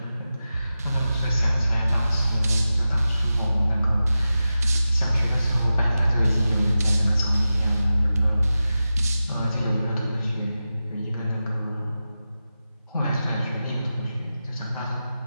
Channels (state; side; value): inverted; both; correlation -0.93